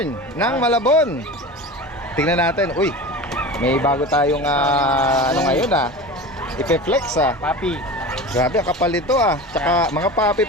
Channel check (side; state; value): both; normal; correlation 0.31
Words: ng Malabon. Tingnan natin. Uy, may bago tayong ngayon Ipe-flex Papi. Grabe, ang kapal nito Tsaka mga papi